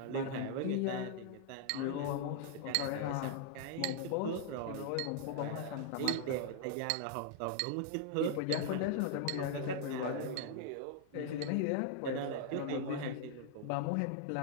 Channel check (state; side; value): different; both; correlation -0.01